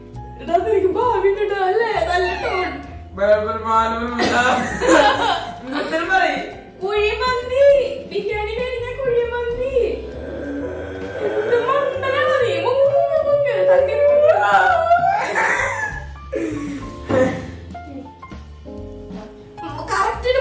കുഴിമന്തി, ബിരിയാണി കഴിഞ്ഞ കുഴിമന്തി. കറക്റ്റിന്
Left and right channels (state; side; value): identical; both; correlation 1.00